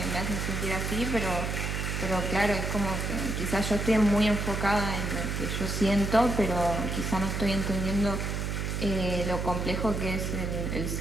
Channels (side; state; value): right; noise; hum, 2 dB below the sound